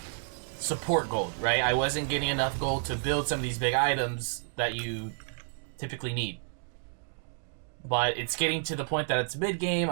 support gold, right? I wasn't getting enough gold to build some of these big items that you typically need. But it's getting to the point that it's mid-game.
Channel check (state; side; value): silent; left; 58 dB below the other